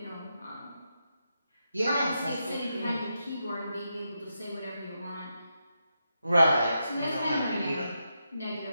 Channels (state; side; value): inverted; both; correlation -0.85